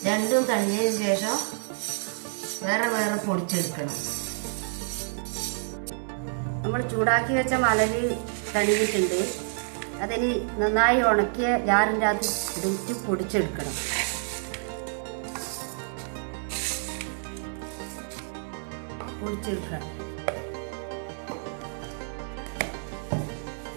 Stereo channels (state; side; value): silent; left; 59 dB below the other